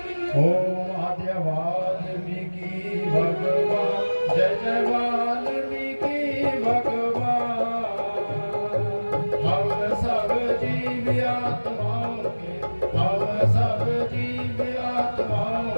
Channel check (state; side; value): inverted; both; correlation -1.00